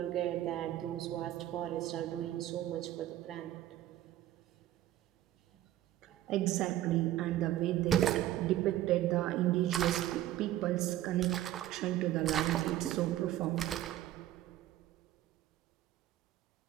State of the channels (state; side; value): quieter; left; 13.6 dB